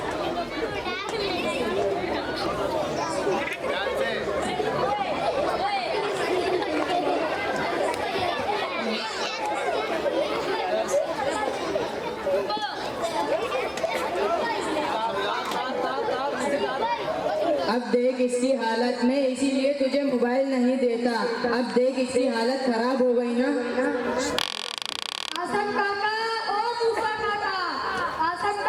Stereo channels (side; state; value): both; identical; correlation 1.00